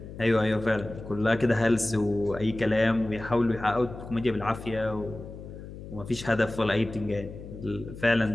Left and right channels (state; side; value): noise; left; hum, 13 dB below the sound